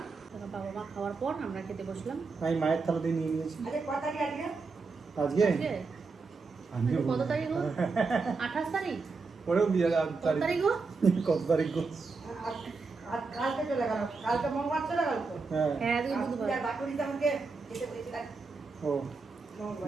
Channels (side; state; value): left; quieter; 4.3 dB